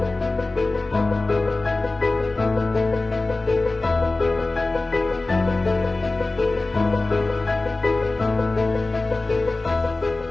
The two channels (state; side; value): quieter; right; 3.2 dB